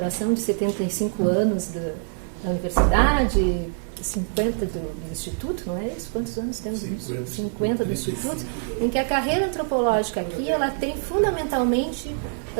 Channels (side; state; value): left; silent; digital silence